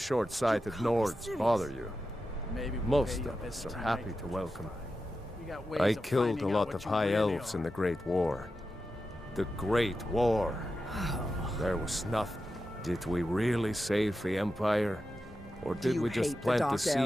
Nords bother you. Maybe we'll Most pay you a of us visit are happy tonight. to welcome. We got ways I of killed a finding out lot what of you high really elves are. in the Great War. The Great War. There was nothing. Did we really save the Empire? Or did we just plant the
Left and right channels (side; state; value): both; normal; correlation 0.91